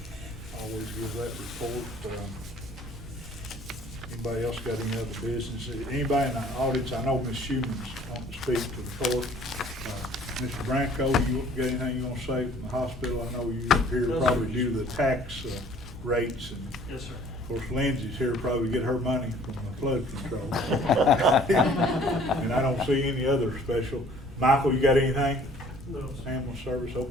always give that report. Anybody else got any other business? Anybody in the audience, I know Ms. Schuman's wanting to speak to the court. Mr. Branco, you got anything you want to say from the hospital? I know you're here No, probably sir. due to the tax rates, and Yes, sir. of course Lindsay's here to probably get her money from the flood control. And I don't see any other special. Michael, you got anything? No. Ambulance service,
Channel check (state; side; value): normal; both; correlation 0.54